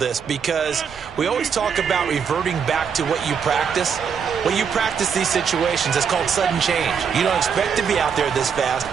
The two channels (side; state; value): left; quieter; 6.8 dB